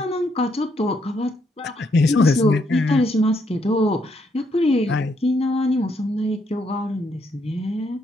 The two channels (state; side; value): normal; both; correlation 0.74